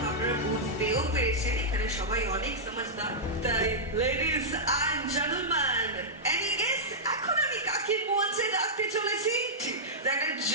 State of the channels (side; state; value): both; normal; correlation -0.10